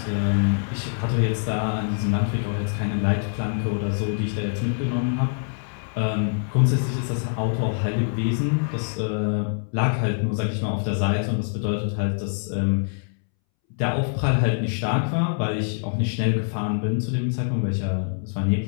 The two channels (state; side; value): silent; right; 62 dB below the other